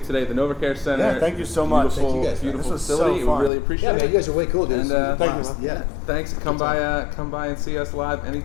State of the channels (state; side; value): drops out; right; at 3.5 s